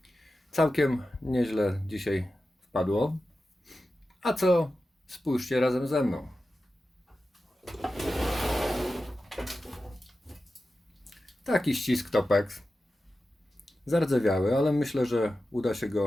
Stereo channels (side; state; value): both; normal; correlation 0.93